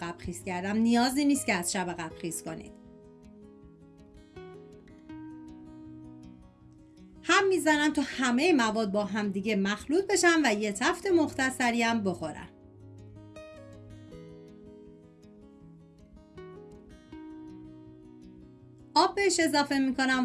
خیس کردم. نیازی نیست که از شب قبل خیس کنید. هم میزنم تا همه مواد با هم دیگه مخلوط بشن و یه تفت مختصری هم بخورن. آب بهش اضافه میکنم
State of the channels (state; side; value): identical; both; correlation 1.00